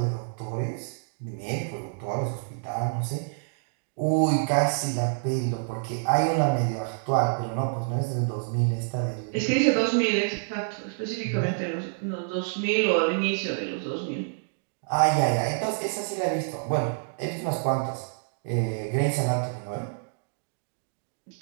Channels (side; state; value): left; silent; digital silence